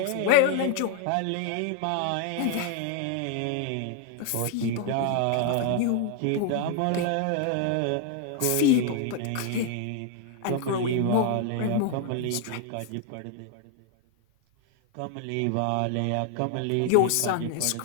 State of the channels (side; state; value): both; different; correlation 0.00